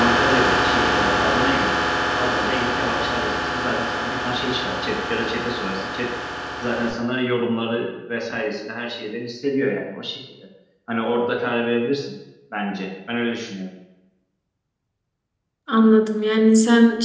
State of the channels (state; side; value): identical; both; correlation 1.00